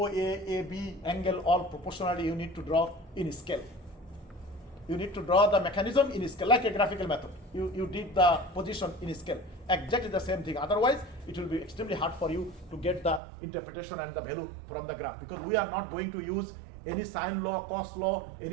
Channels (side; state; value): left; drops out; at 13.2 s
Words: AB, angle, all proportionally you need to draw in scale. You need to draw the mechanism in scale, like a graphical method. You did the position in scale. Exactly the same thing. Otherwise, it will be extremely hard for you to get the interpretation and the value from the graph, because we are not going to use any sine law, cos law,